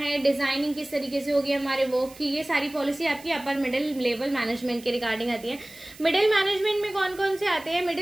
डिजाइनिंग किस तरीके से होगी हमारे वर्क की, ये सारी पॉलिसी आपकी अपर मिडिल लेवल मैनेजमेंट के रिगार्डिंग आती है. मिडिल मैनेजमेंट में कौन कौन से आते हैं?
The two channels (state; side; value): noise; right; hiss, 21 dB below the sound